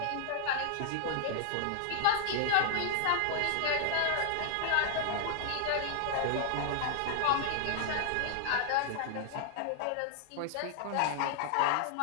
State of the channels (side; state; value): both; different; correlation 0.00